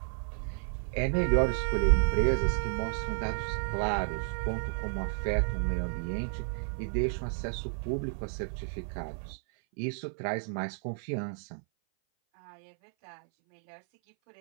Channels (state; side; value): silent; left; 57 dB below the other